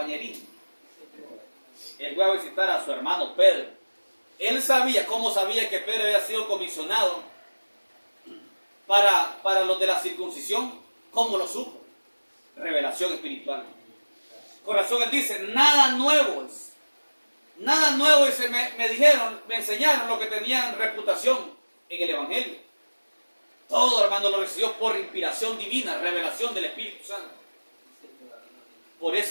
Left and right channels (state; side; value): inverted; both; correlation -1.00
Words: Él fue a visitar a su hermano Pedro. Él sabía, ¿cómo sabía que Pedro había sido comisionado para los de la circuncisión? ¿Cómo lo supo? Revelación espiritual. Con razón él dice, nada nuevo es. Nada nuevo es. Me enseñaron lo que tenían reputación en el Evangelio. Todo, hermano, lo recibió por inspiración divina, revelación del Espíritu Santo. Por